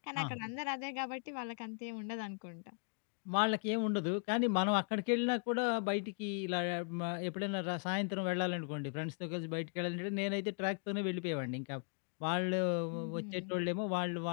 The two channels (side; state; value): right; quieter; 39.7 dB